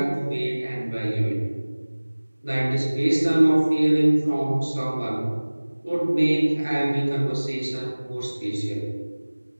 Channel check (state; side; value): inverted; both; correlation -1.00